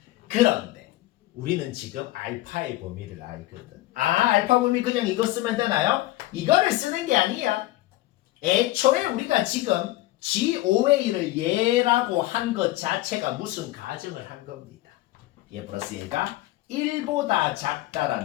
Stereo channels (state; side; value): quieter; right; 17.1 dB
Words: 그런데 우리는 지금 알파의 범위를 알거든. 알파 범위 그냥 이거 쓰면 되나요? 이거를 쓰는 게 아니야. 애초에 우리가 지금 GOA를 얘라고 한 것 자체가 무슨 가정을 한 겁니다. 얘 플러스 얘가 1보다